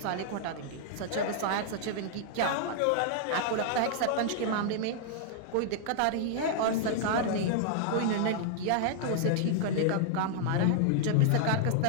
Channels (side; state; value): both; different; correlation -0.01